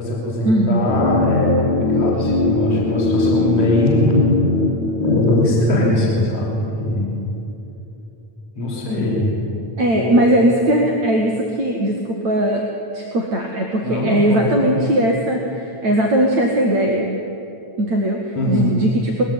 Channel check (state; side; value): late; left; 8.9 ms